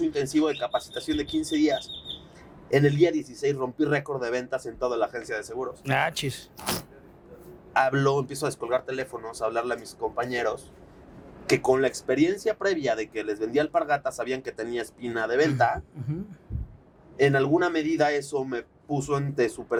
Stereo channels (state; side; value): identical; both; correlation 1.00